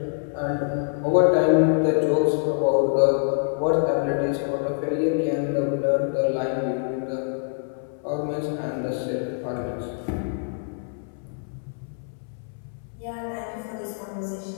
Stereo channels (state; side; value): silent; right; 62 dB below the other